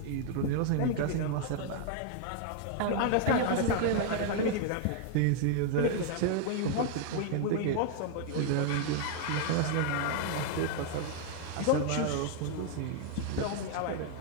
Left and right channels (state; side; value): different; both; correlation 0.00